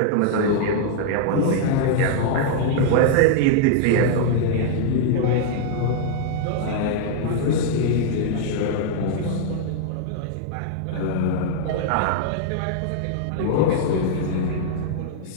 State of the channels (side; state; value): both; different; correlation -0.01